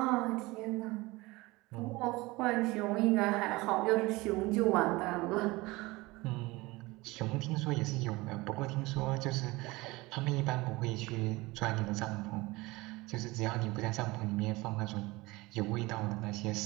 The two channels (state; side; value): quieter; left; 21.8 dB